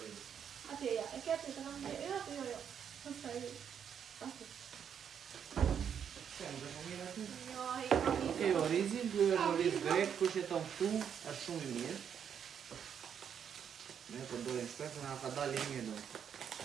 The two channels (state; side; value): quieter; left; 8.1 dB